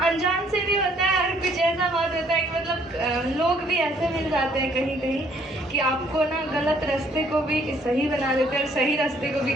अनजान से भी होता है। और कुछ ऐसा बात होता है कि मतलब लोग भी ऐसे मिल जाते हैं कहीं कहीं कि आपको ना गलत रास्ते को भी सही बना देते हैं और सही रास्ते को भी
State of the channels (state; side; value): normal; both; correlation 0.64